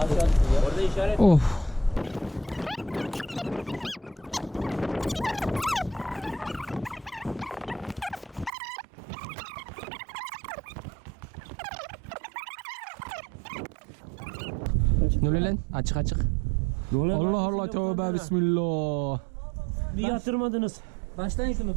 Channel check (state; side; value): drops out; left; at 8.5 s